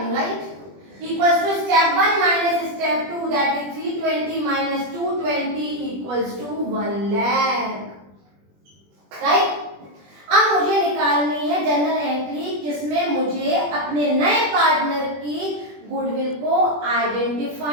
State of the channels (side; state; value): left; late; 20 ms